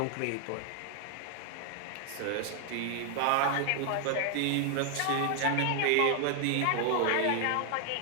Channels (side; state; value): both; different; correlation 0.00